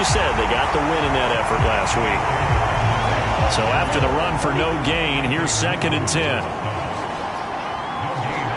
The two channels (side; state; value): both; identical; correlation 1.00